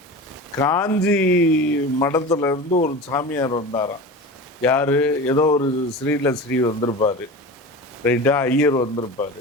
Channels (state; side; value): normal; both; correlation 0.31